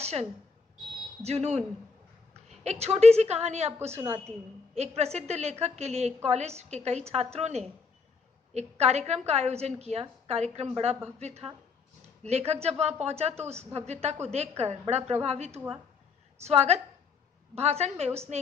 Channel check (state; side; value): quieter; right; 4.9 dB